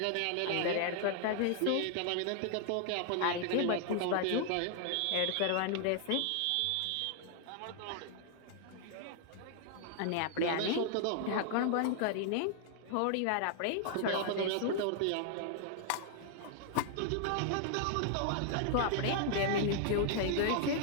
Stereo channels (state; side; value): different; both; correlation 0.00